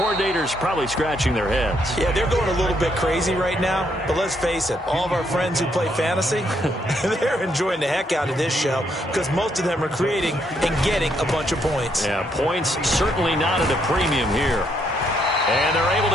probably scratching their heads. Yeah, they're going a little bit crazy right now. But let's face it, all of our friends who play fantasy, they're enjoying the heck out of this show because most of them are creating and getting a bunch of points. Yeah, points certainly not at a premium here. And they're able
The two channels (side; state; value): both; normal; correlation 0.74